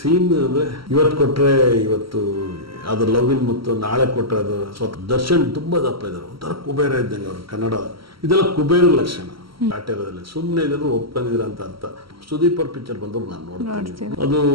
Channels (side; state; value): left; late; 0.75 ms